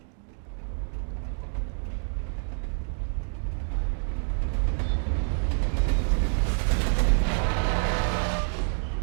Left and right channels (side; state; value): left; silent; 60 dB below the other